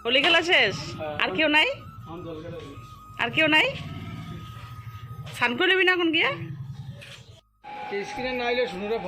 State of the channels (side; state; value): both; identical; correlation 1.00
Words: হোলি খেলা শেষ? আর কেউ নাই? আর কেউ নাই? স্নান করে নেবি না এখন গিয়া? স্ক্রিনে না আইলে শুনুরে